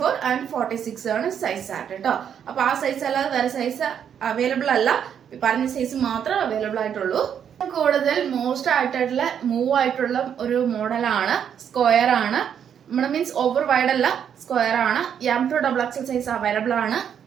ആൻഡ് 46 ആണ് സൈസ് ചാർട്ട് കേട്ടോ. അപ്പൊ ആ സൈസ് അല്ലാതെ വേറെ സൈസ് അവൈലബിൾ അല്ല, പറഞ്ഞ സൈസ് മാത്രമേ അവൈലബിൾ ആയിട്ടുള്ളൂ. കൂടുതൽ മോസ്റ്റ് ആയിട്ടുള്ള മൂവ് ആയിട്ടുള്ള ഒരു മോഡലാണ്. സ്ക്വയർ ആണ്. നമ്മുടെ മീൻസ് ഓവർ വൈഡ് അല്ല, സ്ക്വയർ ആണ്. M2 XXL സൈസ് അവൈലബിൾ ആണ്.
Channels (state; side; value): quieter; left; 8.4 dB